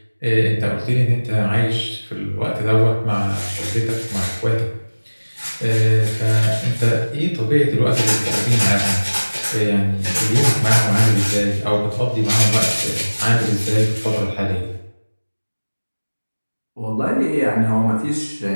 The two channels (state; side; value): inverted; both; correlation -1.00